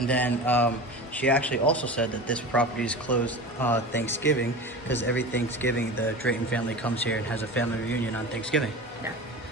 then she actually also said that this property is closed Thanksgiving because every Thanksgiving the Drayton family comes here and has a family reunion on Thanksgiving. Yeah.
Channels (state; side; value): normal; both; correlation 0.31